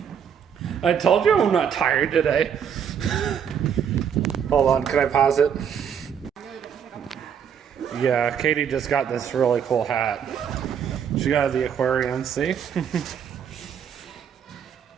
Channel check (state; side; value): quieter; left; 7.9 dB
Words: I told you I'm not tired today. Hold on, can I pause it? Yeah, Katie just got this really cool hat. She got the aquarium, see?